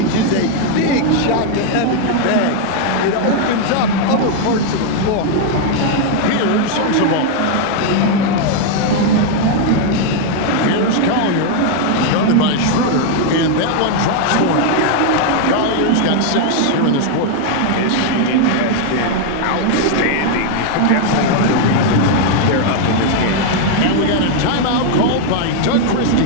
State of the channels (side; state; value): both; different; correlation 0.00